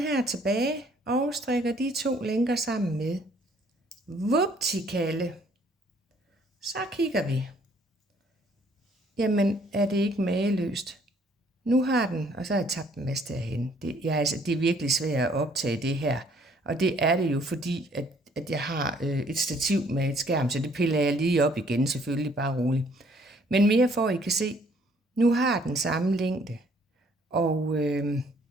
her tilbage og strikker de 2 lænker sammen med. Vuptikalle. Så kigger vi. Jamen, er det ikke mageløst? Nu har den, og så har jeg tabt en masse derhen. Det er virkelig svært at optage det her. Og det er det jo, fordi at jeg har et stativ med et skærm, så det piller jeg lige op igen, selvfølgelig bare roligt. Men mere for, at I kan se, nu har den samme længde. Og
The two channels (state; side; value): normal; both; correlation 0.62